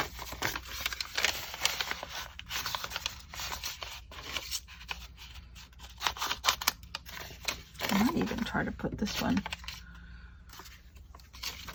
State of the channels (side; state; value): both; identical; correlation 1.00